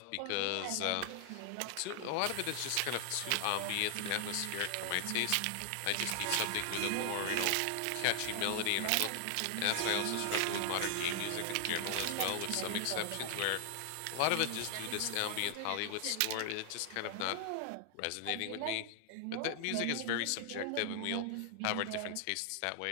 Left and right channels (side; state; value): both; different; correlation 0.00